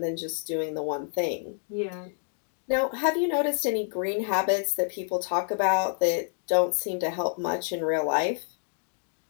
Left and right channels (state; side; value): silent; right; 59 dB below the other